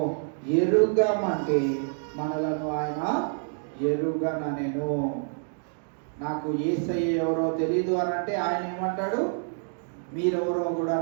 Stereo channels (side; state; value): left; silent; digital silence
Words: ఎరుగమంటే మనలను ఆయన ఎరుగననెను. నాకు యేసయ్య ఎవరో తెలీదు అని అంటే ఆయన ఏమంటాడు? మీరెవరో కూడా